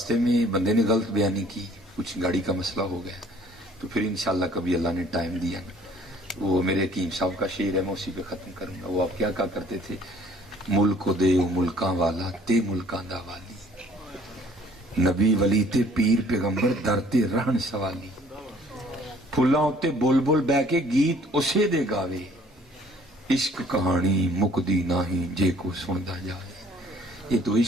में बंदे ने गलत बयानी की, कुछ गाड़ी का मसला हो गया, तो फिर इंशाल्लाह कभी अल्लाह ने टाइम दिया। वो मेरे हकीम साहब का शेर है, मैं उसी पे ख़त्म करूँगा। वो आप क्या कहा करते थे, मुल्क को दे मुल्कां वाला ते मुल्कां दा वाली, नबी वली ते पीर पैगंबर दर ते रहन सवाली। ਫੁੱਲਾਂ ਉੱਤੇ ਬੁਲਬੁਲ ਬਹਿ ਕੇ ਗੀਤ ਉਸੇ ਦੇ ਗਾਵੇ, इश्क कहानी मुकदी नाही जे को सुनता जाए। ये तो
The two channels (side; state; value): both; normal; correlation 0.57